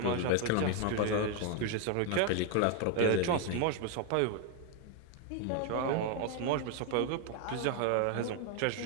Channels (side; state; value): both; different; correlation 0.01